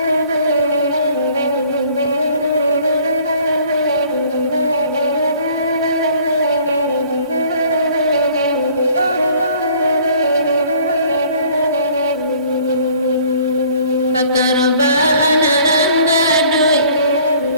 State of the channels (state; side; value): inverted; both; correlation -0.55